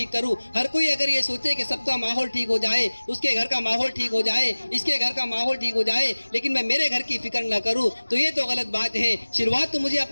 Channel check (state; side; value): inverted; both; correlation -1.00